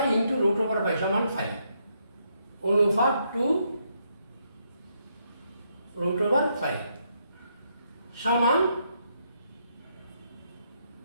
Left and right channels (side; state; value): both; inverted; correlation -0.76